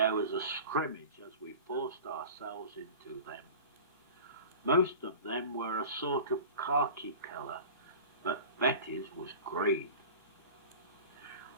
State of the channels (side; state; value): both; inverted; correlation -0.37